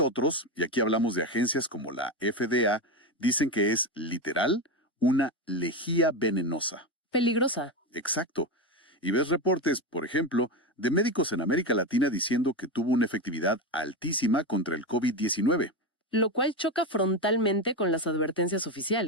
y aquí hablamos de agencias como la FDA, dicen que es literal una lejía venenosa. Peligrosa. Exacto. Y ves reportes, por ejemplo, de médicos en América Latina diciendo que tuvo una efectividad altísima contra el COVID-19. Lo cual choca frontalmente con las advertencias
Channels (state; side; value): normal; both; correlation 0.16